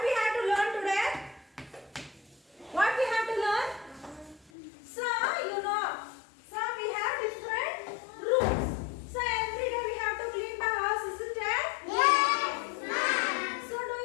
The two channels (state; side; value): drops out; right; at 4.5 s